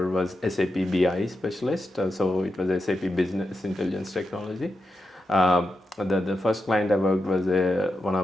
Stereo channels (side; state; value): both; normal; correlation 0.88